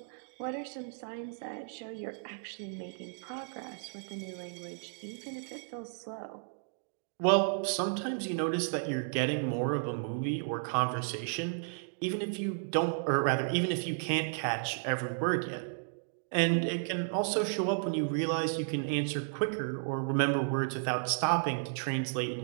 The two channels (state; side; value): silent; left; digital silence